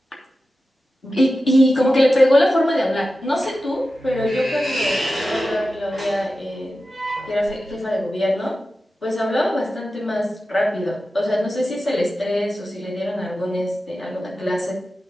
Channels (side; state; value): both; normal; correlation 0.93